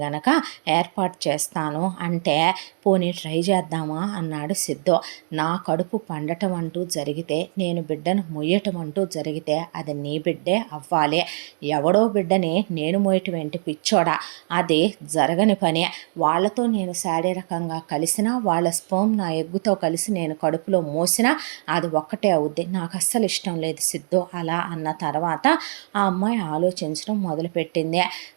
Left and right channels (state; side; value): silent; left; digital silence